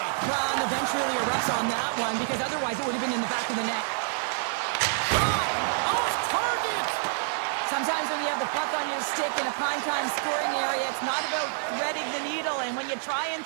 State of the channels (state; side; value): silent; left; digital silence